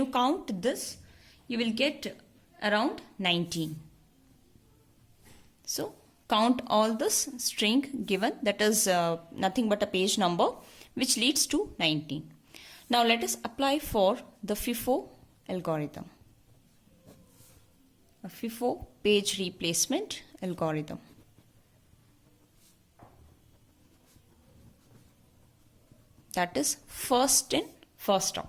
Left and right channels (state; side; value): identical; both; correlation 1.00